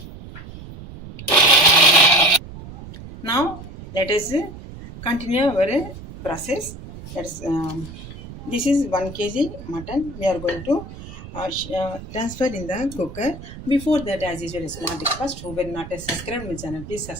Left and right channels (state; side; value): noise; right; rumble, 14 dB below the sound